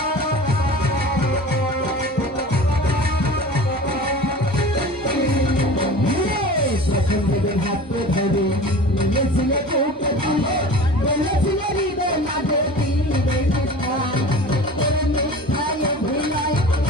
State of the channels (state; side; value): normal; both; correlation 0.38